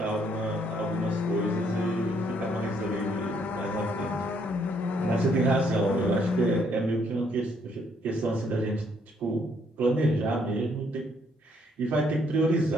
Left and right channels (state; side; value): normal; both; correlation 0.69